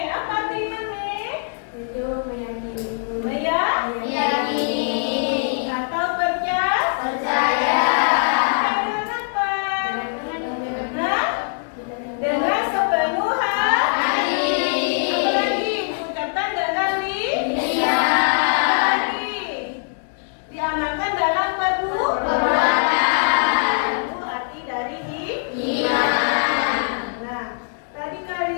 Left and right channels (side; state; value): right; silent; digital silence